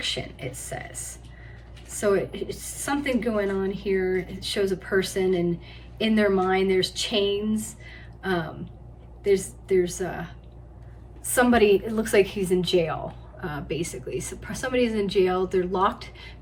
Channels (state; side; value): identical; both; correlation 1.00